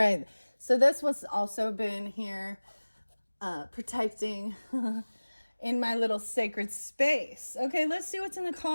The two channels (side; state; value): both; inverted; correlation -1.00